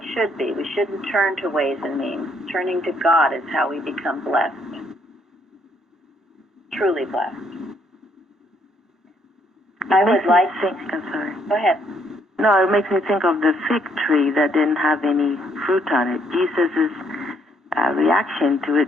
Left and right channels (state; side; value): normal; both; correlation 0.69